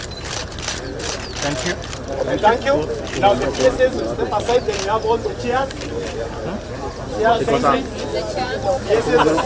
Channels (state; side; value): identical; both; correlation 1.00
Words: Thank you. Thank you. Now the PSS will step aside, then you have all the chairs. Chairs facing. PSS is